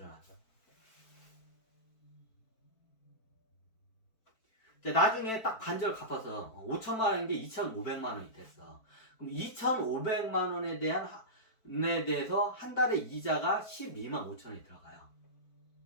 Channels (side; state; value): right; late; 4.5 ms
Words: 이제 나중에 딱 반절 갚아서 5천만 원인 게 2,500만 원이 됐어. 그럼 2,500만 원에 대해서 한 달에 이자가 12만 5천 원이 들어가요.